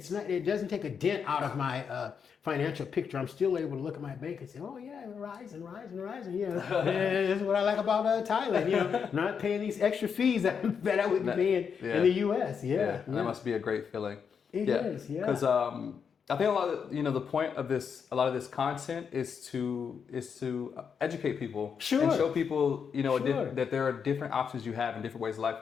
doesn't take a dent out of my financial picture. I'm still able to look at my bank and say, oh yeah, rising. You know, this is what I like about Thailand. You know, not paying these extra fees that I would be paying in the U.S. Yeah. That must be a great feeling. It is. Because I think a lot of the point of a lot of this content is to educate people and show people, you know, that there are different options you have in different ways of life.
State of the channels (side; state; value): right; quieter; 6.7 dB